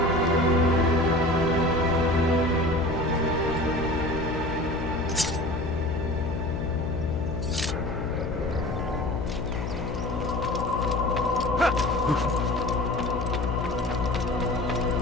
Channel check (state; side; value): noise; left; hum, 4 dB below the sound